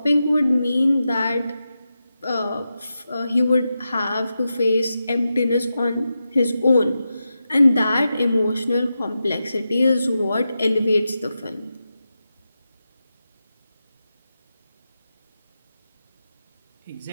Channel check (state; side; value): inverted; both; correlation -0.90